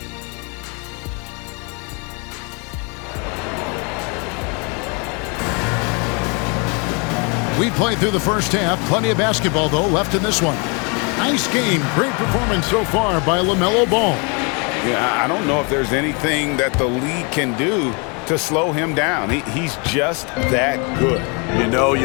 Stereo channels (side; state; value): right; quieter; 33.2 dB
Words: We played through the first half. Plenty of basketball, though, left in this one. Nice game. Great performance so far by LaMelo Ball. Yeah, I don't know if there's anything that the league can do to slow him down. He's just that good. You know,